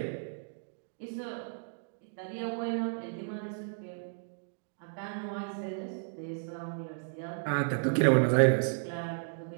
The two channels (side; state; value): left; silent; digital silence